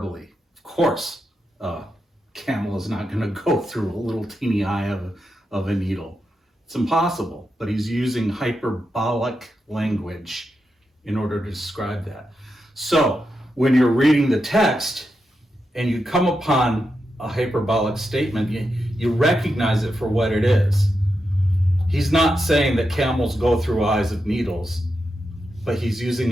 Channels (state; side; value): normal; both; correlation 0.87